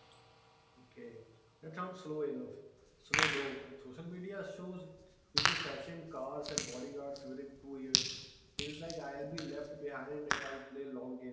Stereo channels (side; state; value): both; identical; correlation 1.00